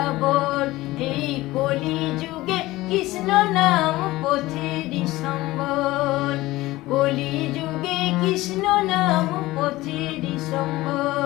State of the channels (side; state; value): right; quieter; 18.3 dB